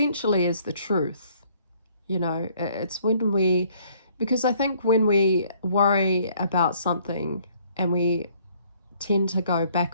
is the truth. You know, it's because I think when we worry about something and we tend to go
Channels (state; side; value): inverted; both; correlation -0.62